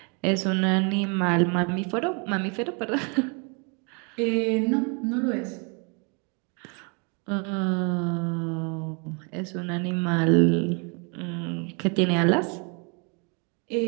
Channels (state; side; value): quieter; left; 34.7 dB